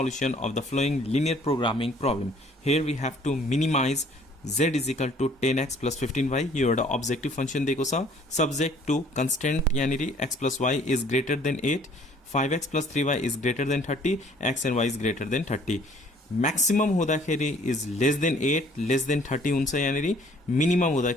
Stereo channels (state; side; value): normal; both; correlation 0.57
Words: of the following linear programming problem. Here we have to minimize z is equal to 10x plus 15y। यो एउटा objective function दिएको छ, सब्जेक्ट टू कंस्टेंट यानी x plus y is greater than 8, 5x plus 3y is greater than 30, x and y is greater than 30। Maximum हुँदाखेरि is less than 8 less than 30 हुन्छ, यानी minimum